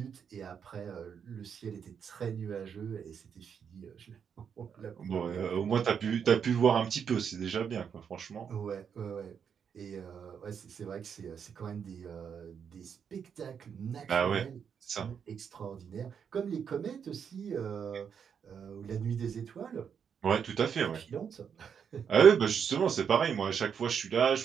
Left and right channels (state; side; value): quieter; left; 7.3 dB